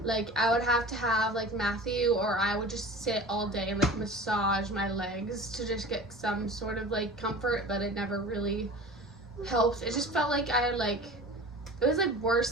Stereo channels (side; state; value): both; normal; correlation 0.38